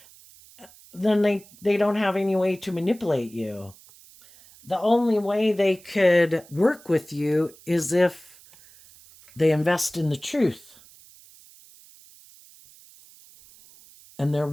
then they don't have any way to manipulate you. The only way they could work with you is if they invest in the truth. And they're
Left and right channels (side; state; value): right; noise; hiss, 24 dB below the sound